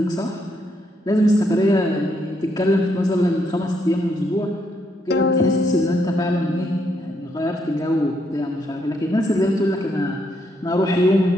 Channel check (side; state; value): both; normal; correlation 0.76